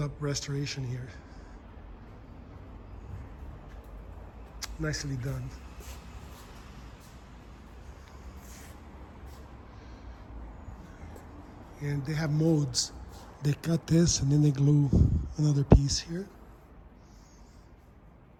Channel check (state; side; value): identical; both; correlation 1.00